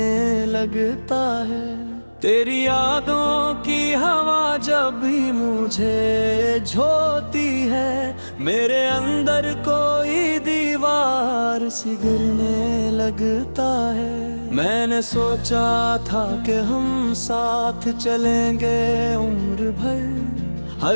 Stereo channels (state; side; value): inverted; both; correlation -1.00